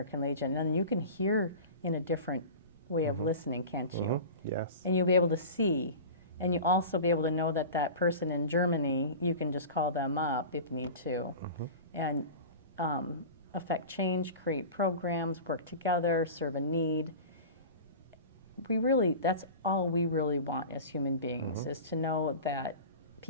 Legion. And you can hear in a different way of listening, can't you? Yes. And you'll be able to see. And you also be able to know that that person in Germany, you can just call them up if you need to, and affect change, create programs, work together, serve a need. That's all we really want as human beings, is to know that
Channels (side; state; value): both; inverted; correlation -0.33